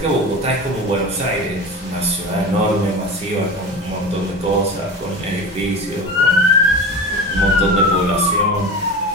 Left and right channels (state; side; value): normal; both; correlation 0.30